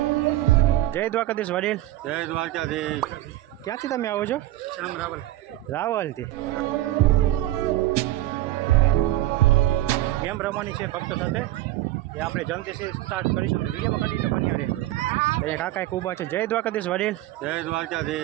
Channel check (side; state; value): left; quieter; 15.1 dB